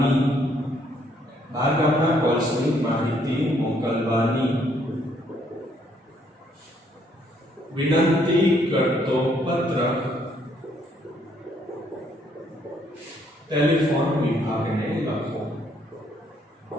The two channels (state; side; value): normal; both; correlation 0.69